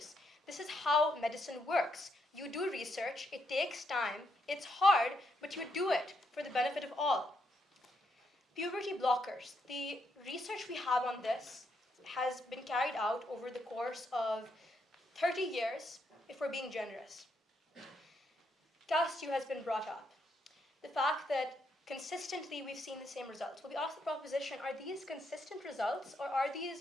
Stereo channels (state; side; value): normal; both; correlation 0.77